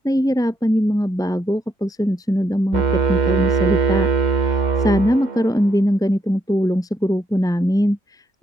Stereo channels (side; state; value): both; normal; correlation 0.77